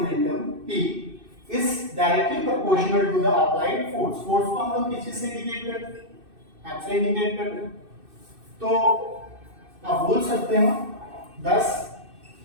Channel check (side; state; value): left; late; 2.6 ms